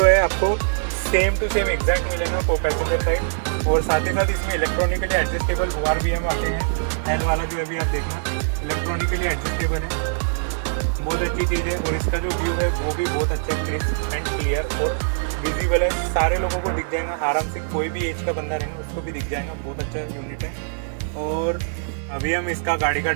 है आपको सेम टू सेम एग्जैक्ट मिलेगा को पैसेंजर साइड। और साथ ही साथ इसमें इलेक्ट्रॉनिकली एडजस्टेबल हुआर भी हम आते हैं। एल वाला जो अभी आप देखना इलेक्ट्रॉनिकली एडजस्टेबल है, बहुत अच्छी चीज़ है। और इसका जो व्यू है वो भी बहुत अच्छा है, क्रिस्प एंड क्लियर और विजिबल है, सारे लोगों को दिख जाएगा आराम से। कोई भी एज का बंदा रहेगा उसको भी दिख जाएगा, बहुत अच्छा यूनिट है। और अभी हम इसका गाड़ी का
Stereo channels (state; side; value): silent; left; digital silence